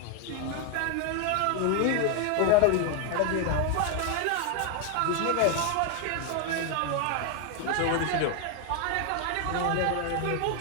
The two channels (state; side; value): different; both; correlation 0.01